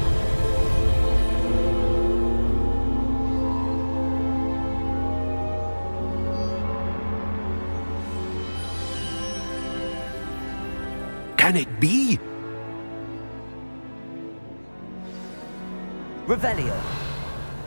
Can it be? Revelio.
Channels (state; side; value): inverted; both; correlation -1.00